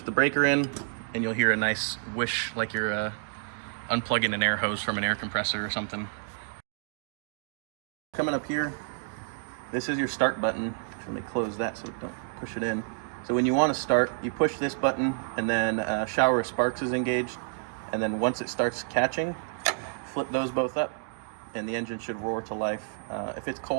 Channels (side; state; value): left; silent; digital silence